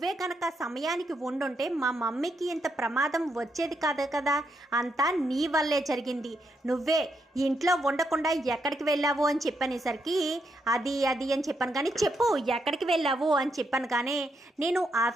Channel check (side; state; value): both; normal; correlation 0.80